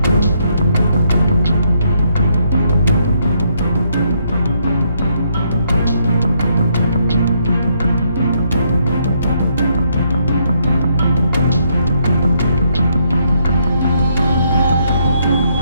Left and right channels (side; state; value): both; inverted; correlation -0.73